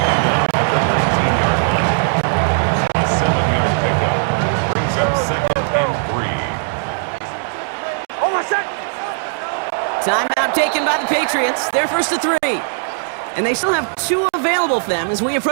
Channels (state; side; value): silent; left; digital silence